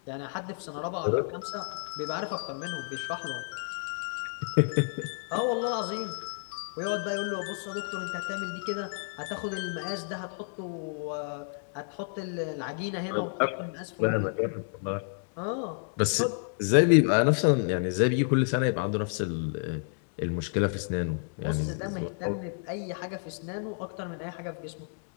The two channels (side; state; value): right; silent; digital silence